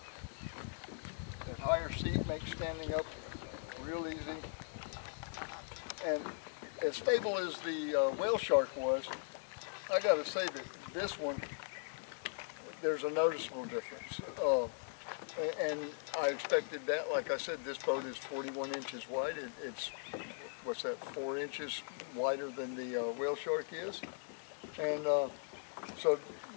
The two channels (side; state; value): right; silent; digital silence